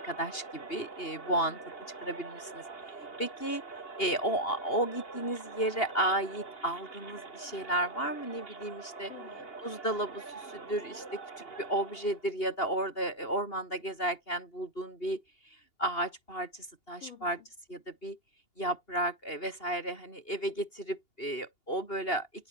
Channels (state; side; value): late; right; 2.8 ms